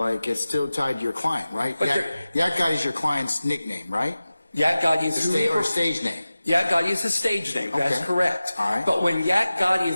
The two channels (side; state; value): both; inverted; correlation -0.96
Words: it's still tied to your client, right? But Yak Gotti's your client's nickname, right? Yak Gotti is who he Or stage name. Yak Gotti is his stage name. That's Okay. correct. All right. But when Yak Gotti